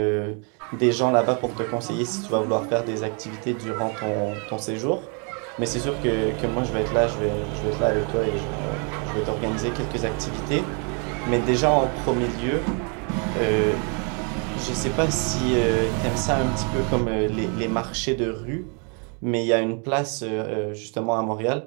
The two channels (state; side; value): quieter; left; 37.1 dB